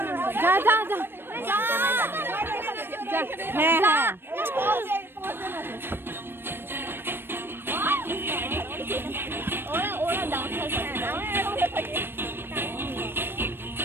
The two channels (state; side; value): late; left; 0.10 ms